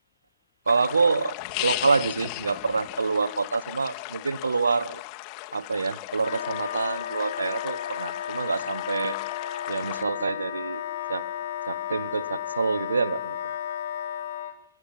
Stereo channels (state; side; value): inverted; both; correlation -0.79